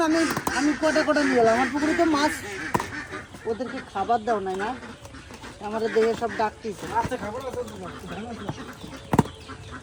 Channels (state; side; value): identical; both; correlation 1.00